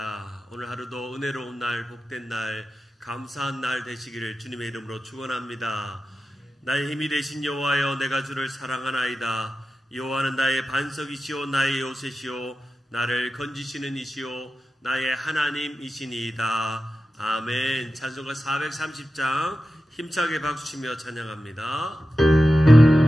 오늘 하루도 은혜로운 날, 복된 날, 감사한 날 되시기를 주님의 이름으로 축원합니다. 나의 힘이 되신 여호와여, 내가 주를 사랑하나이다. 여호와는 나의 반석이시오, 나의 요새시오, 나를 건지시는 이시오, 나의 하나님이시니이다. 아멘. 찬송가 430장 힘차게 박수치며 찬양합니다.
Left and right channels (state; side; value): normal; both; correlation 0.93